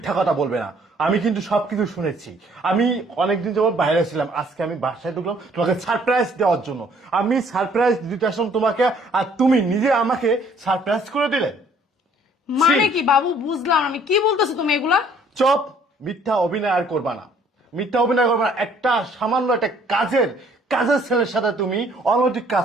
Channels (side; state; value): both; normal; correlation 0.60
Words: কথা বলবে না। আমি কিন্তু সবকিছু শুনেছি। আমি অনেকদিন যাবত বাইরে ছিলাম, আজকে আমি বাসায় ঢুকলাম তোমাকে সারপ্রাইজ দেওয়ার জন্য। আমি সারপ্রাইজ দিতে আসলাম তোমাকে, আর তুমি নিজে আমাকে সারপ্রাইজ করে দিলে। মানে ছি। কি বাবু, বুঝলাম আমি, কি বলতেছো তুমি এগুলা? চপ, মিথ্যা অভিনয় আর করবা না, মিথ্যা অভিনয় করবা না। একটা সামান্য একটা কাজের কাজের ছেলের সাথে তুমি অনৈতিক